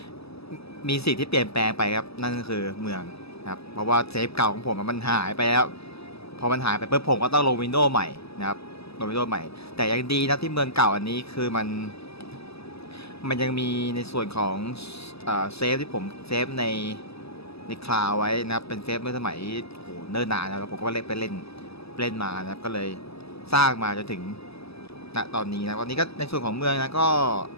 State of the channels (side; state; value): right; late; 0.78 ms